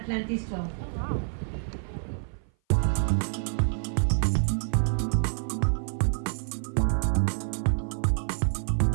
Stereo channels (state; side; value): silent; left; 56 dB below the other